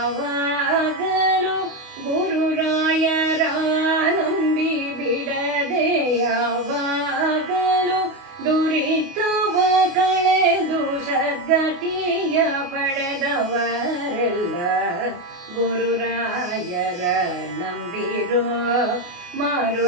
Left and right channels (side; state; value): left; late; 28 ms